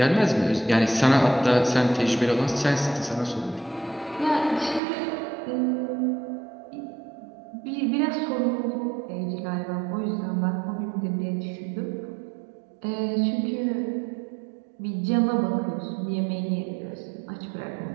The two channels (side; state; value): left; drops out; at 4.8 s